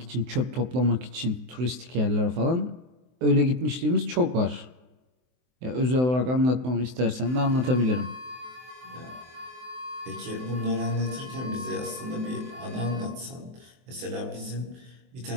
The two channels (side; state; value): left; late; 23 ms